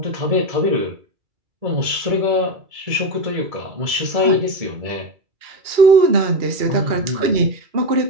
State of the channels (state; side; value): late; left; 2.3 ms